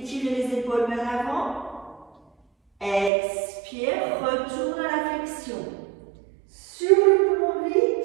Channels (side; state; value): left; drops out; at 3.1 s